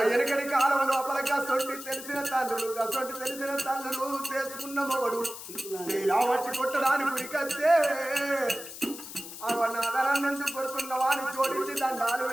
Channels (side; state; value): left; noise; hiss, 12 dB below the sound